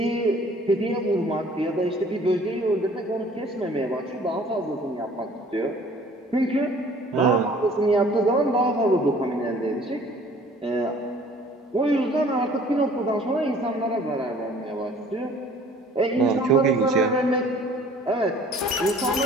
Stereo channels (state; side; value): normal; both; correlation 0.52